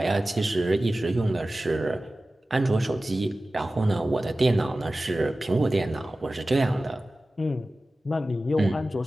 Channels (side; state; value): both; normal; correlation 0.96